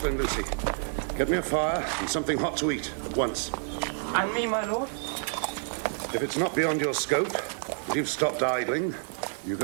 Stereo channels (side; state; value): left; silent; 59 dB below the other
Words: Lucy, get me a fire and something hot to eat at once. And me, my lord? If it's not beyond your scope, and you've stopped idling, you